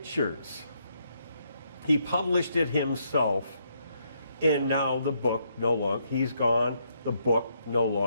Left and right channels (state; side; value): inverted; both; correlation -0.75